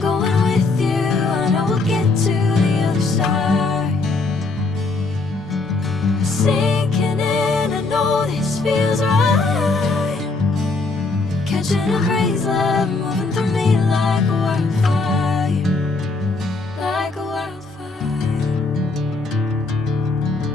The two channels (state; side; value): quieter; right; 3.6 dB